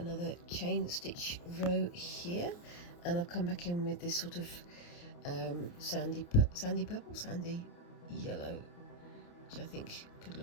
chain stitch row here, and I've come back in with this sort of sandy purple, sandy yellow, which I think could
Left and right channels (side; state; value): right; late; 29 ms